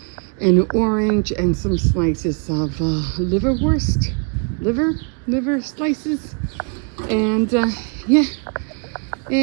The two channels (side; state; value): left; quieter; 38.2 dB